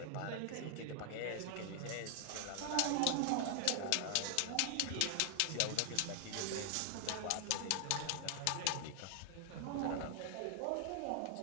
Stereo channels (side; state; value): both; different; correlation 0.00